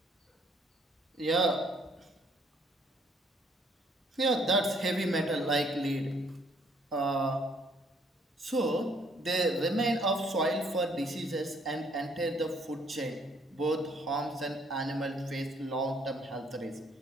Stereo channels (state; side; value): normal; both; correlation 0.64